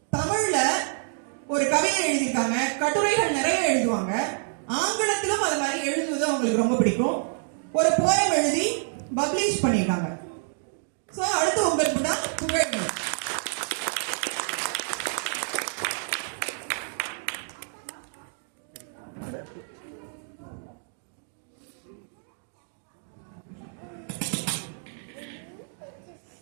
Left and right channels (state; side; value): silent; left; digital silence